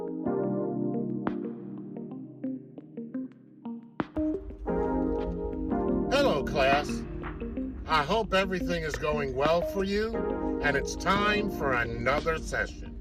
Hello, class. I hope everything is going well for you, and it's time for another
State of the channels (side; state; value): both; identical; correlation 1.00